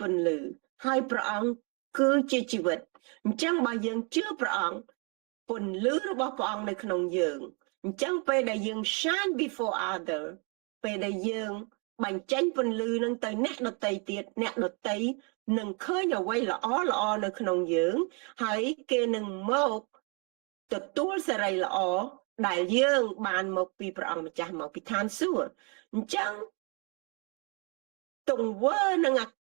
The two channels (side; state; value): left; quieter; 34.7 dB